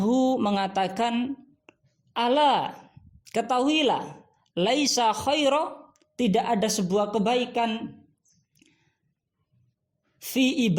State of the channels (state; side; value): identical; both; correlation 1.00